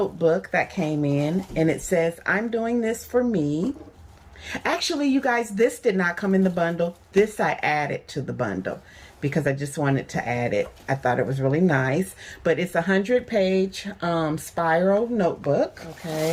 that came in, and it says, I'm doing this for me. Actually, you guys, this did not come in the bundle. This I added to the bundle because I just wanted to add it. I thought it was really nice, but it's a 100-page spiral notebook.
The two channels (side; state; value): both; identical; correlation 1.00